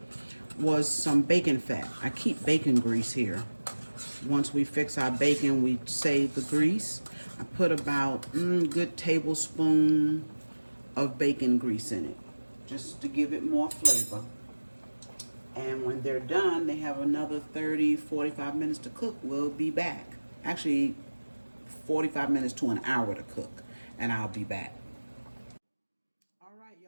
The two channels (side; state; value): both; inverted; correlation -1.00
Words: was some bacon fat. I keep bacon grease here. Once we fix our bacon, we save the grease. I put about a good tablespoon of bacon grease in it, just to give it more flavor. And when they're done, they have another 30, 45 minutes to cook. We'll be back. Actually, 45 minutes to an hour to cook, and I'll be back. All right,